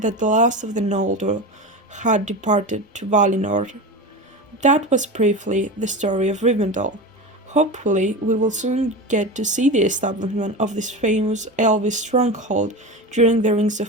the last of the Noldor had departed to Valinor. That was briefly the story of Rivendell. Hopefully, we will soon get to see the establishment of this famous Elvish stronghold during the Rings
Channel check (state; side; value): normal; both; correlation 0.25